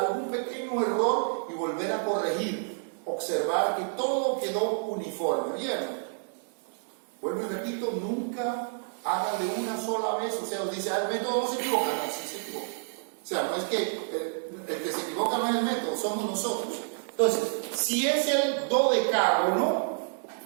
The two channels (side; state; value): left; silent; 58 dB below the other